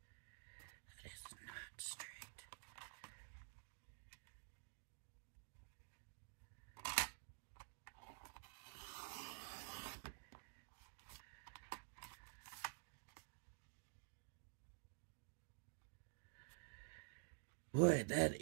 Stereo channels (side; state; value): left; silent; digital silence